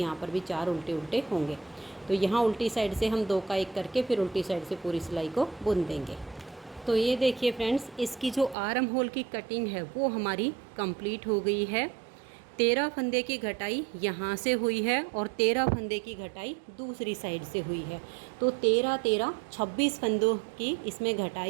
पर भी 4 उल्टे उल्टे होंगे। तो यहाँ उल्टी साइड से हम 2 का 1 करके फिर उल्टी साइड से पूरी सिलाई को बुन देंगे। तो ये देखिए फ्रेंड्स, इसकी जो आर्म होल की कटिंग है वो हमारी कंप्लीट हो गई है। 13 फंदे की घटाई यहाँ से हुई है और 13 फंदे की घटाई दूसरी साइड से हुई है। तो 13 26 फंदों की इसमें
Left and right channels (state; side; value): drops out; left; at 8.6 s